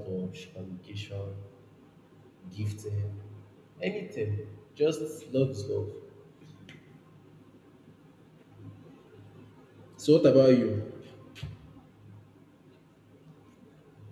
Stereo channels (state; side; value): identical; both; correlation 1.00